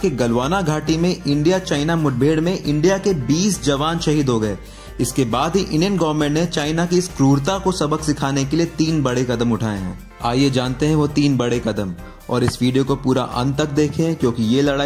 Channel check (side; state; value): both; identical; correlation 1.00